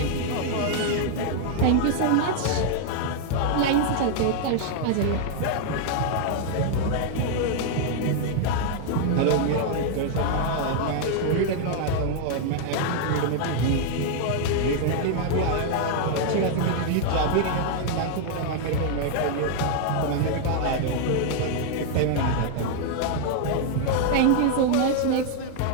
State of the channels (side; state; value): both; different; correlation 0.00